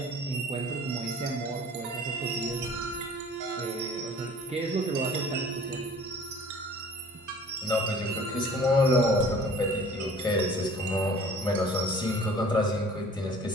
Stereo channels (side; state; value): both; normal; correlation 0.49